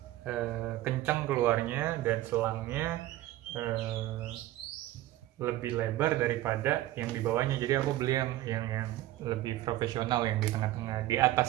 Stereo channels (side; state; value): left; quieter; 15.3 dB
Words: kencang keluarnya, dan selangnya lebih lebar daripada yang di bawahnya. Jadi aku beli yang lebih profesional, yang di tengah-tengah. Di